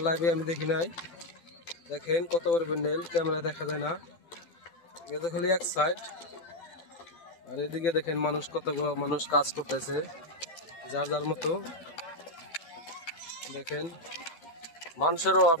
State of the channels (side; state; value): right; late; 12 ms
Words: লাইভে আমি দেখি নাই। দেখেন কত বড় প্যান্ডেল, ক্যামেরা দেখা যায় না, এটা খালি এক সাইড। আর এদিকে দেখেন মানুষ, কতগুলো মানুষ কাজ করতেছে যার যার মতো। দেখেন মানুষের অভাব